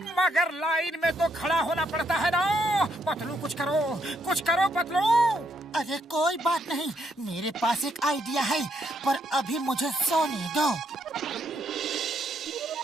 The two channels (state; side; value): normal; both; correlation 0.74